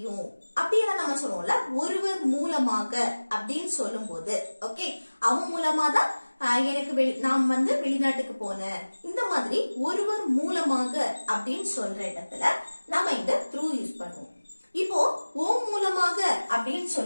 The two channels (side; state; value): both; inverted; correlation -1.00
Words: அப்படின்னு நம்ம சொல்லுவோம்ல. ஒருவர் மூலமாக அப்படின்னு சொல்லும் போது ஓகே, அவன் மூலமா தான் எனக்கு நான் வந்து வெளிநாட்டுக்கு போனேன், இந்த மாதிரி ஒருவர் மூலமாக அப்படின்னு சொல்ற இடத்துல நம்ம இந்த through யூஸ் பண்ணுவோம். இப்போ ஓ மூலமாக அப்படின்னு